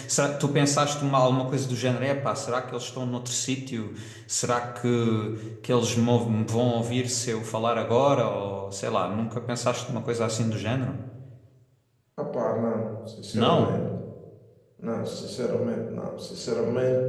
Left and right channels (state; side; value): identical; both; correlation 1.00